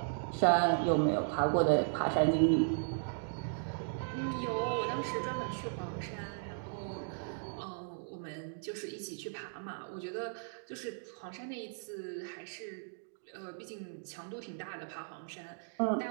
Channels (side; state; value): left; silent; digital silence